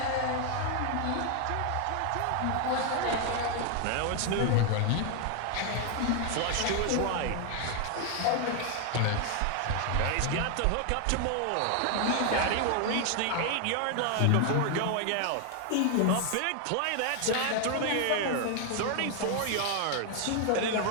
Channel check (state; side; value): different; both; correlation 0.00